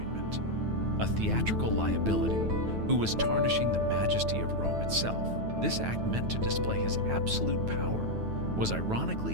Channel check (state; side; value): late; left; 9.2 ms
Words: A theatrical liability who was tarnishing the majesty of Rome itself. This act, meant to display his absolute power, was